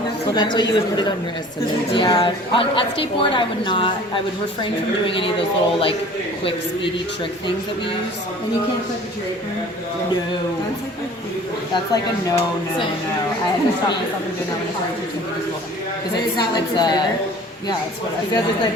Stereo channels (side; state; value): both; normal; correlation 0.47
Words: that's why you would put it on your estimate. Yeah, at skateboard I would not. I would refrain from doing any of those little like quick, speedy trick things that we use. And you can't clip your draper. No, that's like a no. I had to stop myself from doing that when I started teaching middle school. Because Is that like it's your favorite? yeah, it's what I Because it's